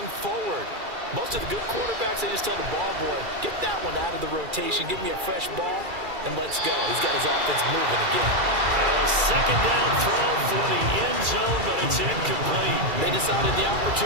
forward. Most of the good quarterbacks, they just tell the ball boy, get that one out of the rotation, give me a fresh ball, and let's go. He's got his offense moving again. Now a second down throw for the end zone, but it's incomplete. They decided the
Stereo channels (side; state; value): left; late; 2.4 ms